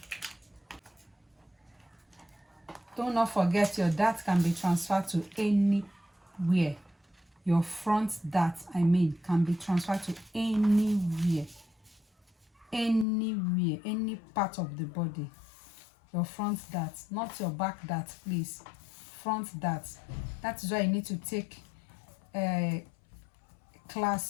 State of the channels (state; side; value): drops out; right; at 13.1 s